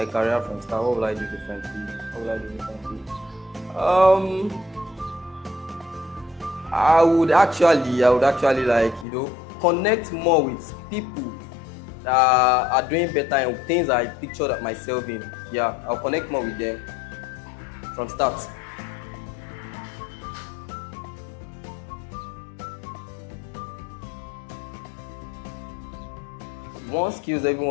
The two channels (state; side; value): drops out; right; at 9.1 s